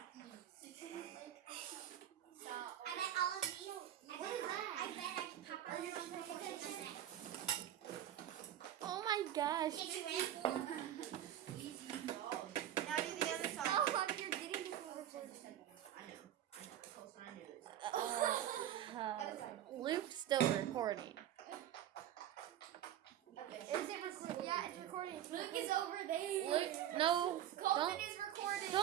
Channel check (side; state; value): left; quieter; 11.4 dB